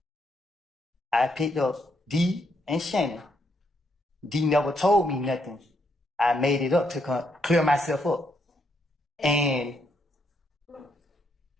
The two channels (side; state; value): both; normal; correlation 0.75